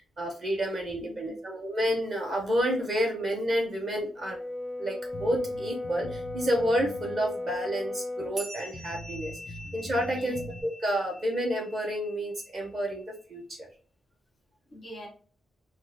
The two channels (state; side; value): normal; both; correlation 0.81